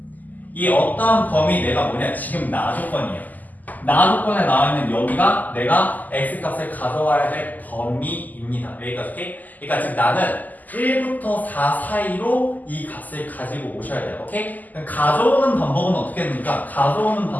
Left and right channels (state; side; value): late; right; 0.082 ms